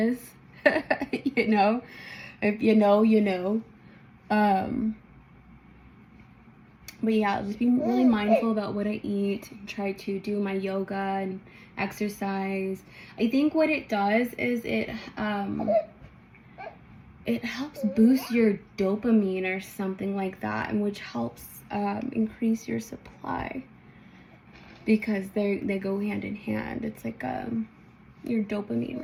You know, if you know, you know. But yeah, just being really mindful about what I eat, try to do my yoga and exercise. I think what it does is it helps boost your dopamine or something like that, and which helps increase your supply, because they go hand in hand. It's like your dopamine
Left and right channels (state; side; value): identical; both; correlation 1.00